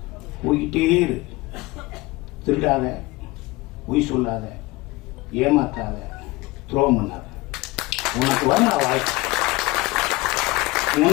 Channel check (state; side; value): quieter; right; 21.8 dB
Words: போய்கிட்டே இரு. திருடாத, பொய் சொல்லாத, ஏமாத்தாத, துரோகம் பண்ணாத. உனக்கு வரும் வாய்ப்பு,